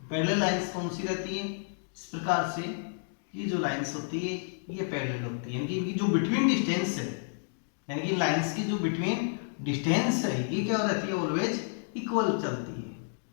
parallel lines कौन सी रहती है? इस प्रकार से ये जो लाइंस होती है ये पैरेलल होती है, यानी कि इनकी जो बिटवीन डिस्टेंस है, यानी कि लाइंस की जो बिटवीन डिस्टेंस है ये क्या रहती है? ऑलवेज इक्वल चलती है।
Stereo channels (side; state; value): right; silent; digital silence